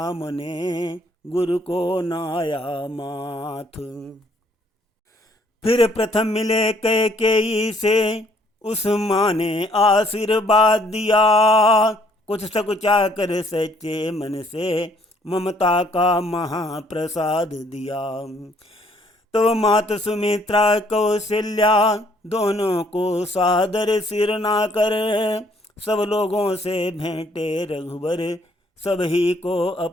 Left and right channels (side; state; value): both; normal; correlation 0.65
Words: ने गुरु को नाया माथ। फिर प्रथम मिले कैकेयी से उस माँ ने आशीर्वाद दिया, कुछ सकुचा कर सच्चे मन से ममता का महाप्रसाद दिया। तो मात सुमित्रा कौशल्या दोनों को सादर सिर ना कर, सब लोगों से भेंटे रघुवर सभी को